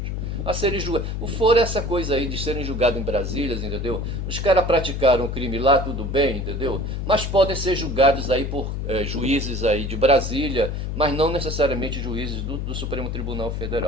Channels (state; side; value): noise; left; hum, 3 dB below the sound